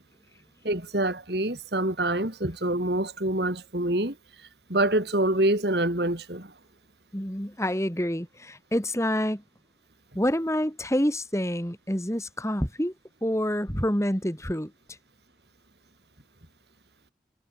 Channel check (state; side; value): normal; both; correlation 0.52